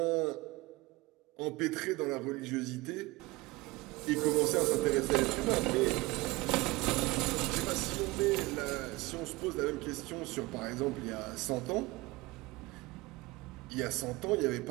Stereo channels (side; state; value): left; quieter; 22.0 dB